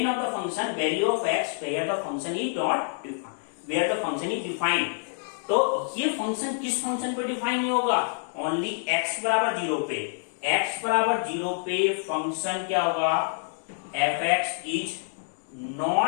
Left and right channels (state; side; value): silent; right; 60 dB below the other